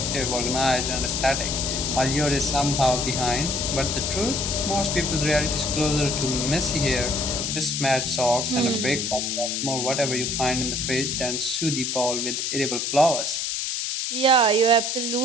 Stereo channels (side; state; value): left; noise; hiss, 1 dB below the sound